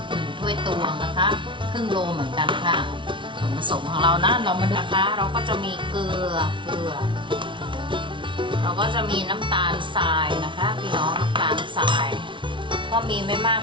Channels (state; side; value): late; left; 0.24 ms